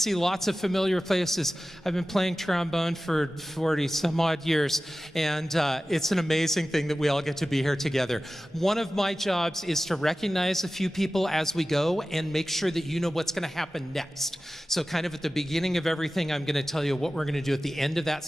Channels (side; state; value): both; normal; correlation 0.95